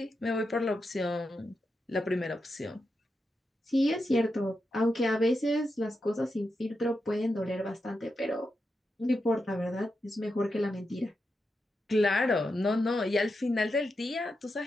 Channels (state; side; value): normal; both; correlation 0.87